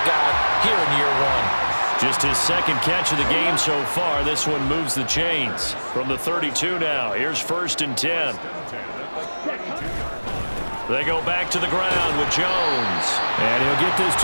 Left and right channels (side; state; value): both; inverted; correlation -1.00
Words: guy here in year one. Just his second catch of the game so far. This one moves the chains. From the 32 now, here's 1st and 10. They go back to the ground with Jones. And he'll get this